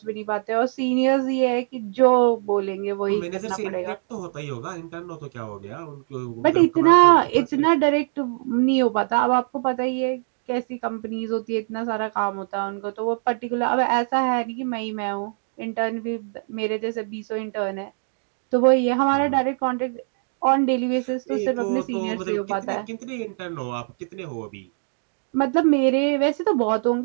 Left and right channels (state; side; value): silent; left; digital silence